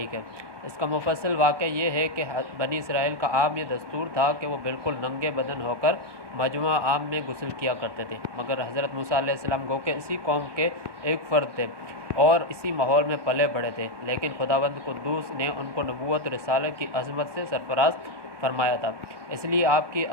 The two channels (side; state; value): left; late; 1.2 ms